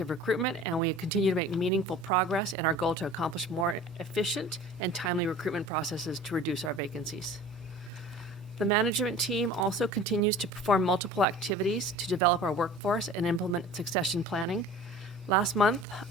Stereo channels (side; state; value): both; normal; correlation 0.42